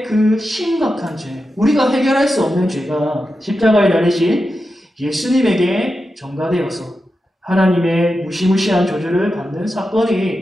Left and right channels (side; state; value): both; normal; correlation 0.90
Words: 그 심각한 죄, 우리가 해결할 수 없는 죄가 십자가에 달리신 예수님에게 전가되어서 하나님의 무시무시한 저주를 받는